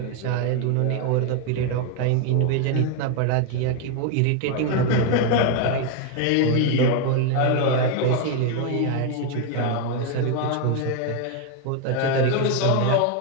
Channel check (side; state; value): both; different; correlation 0.01